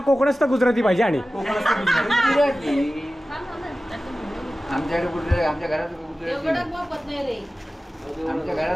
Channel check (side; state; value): both; normal; correlation 0.96